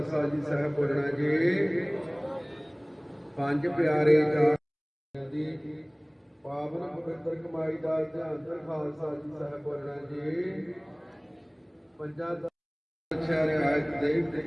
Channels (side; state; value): both; identical; correlation 1.00